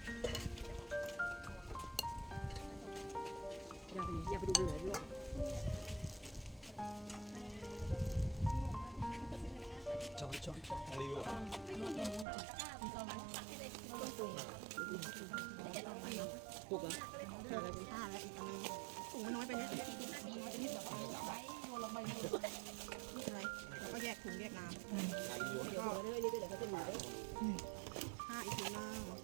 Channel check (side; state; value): left; drops out; at 12.2 s